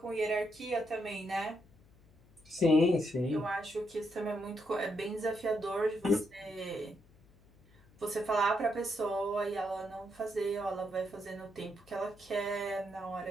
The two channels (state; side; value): noise; left; hum, 27 dB below the sound